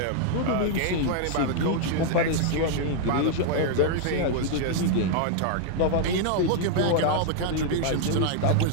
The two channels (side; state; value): both; different; correlation 0.00